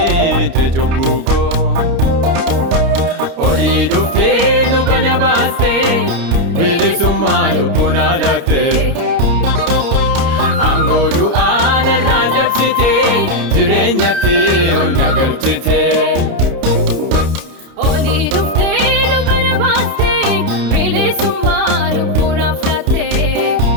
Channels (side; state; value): left; late; 29 ms